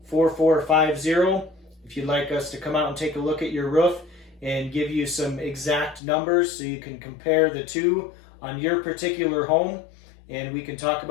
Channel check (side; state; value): right; drops out; at 6.0 s